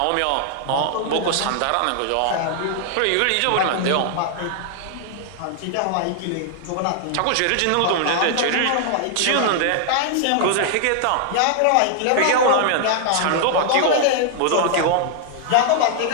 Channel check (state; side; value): different; both; correlation 0.00